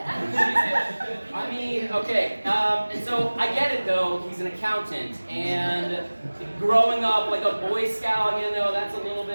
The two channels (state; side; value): inverted; both; correlation -1.00